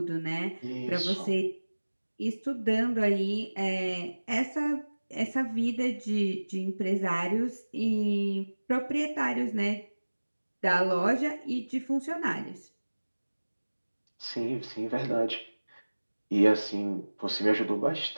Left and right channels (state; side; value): inverted; both; correlation -1.00